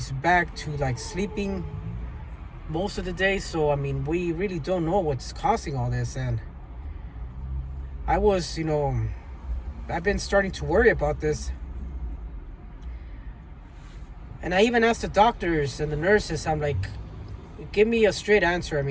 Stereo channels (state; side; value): identical; both; correlation 1.00